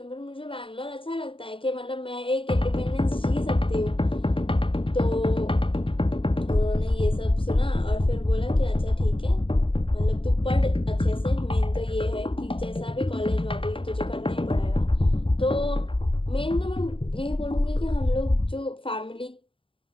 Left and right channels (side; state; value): right; late; 0.25 ms